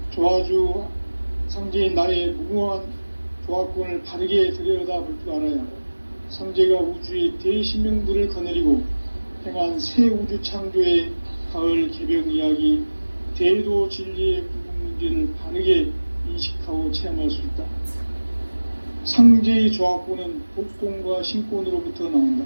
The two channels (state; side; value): inverted; both; correlation -1.00